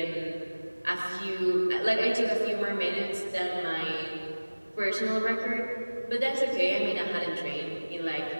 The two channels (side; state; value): both; inverted; correlation -1.00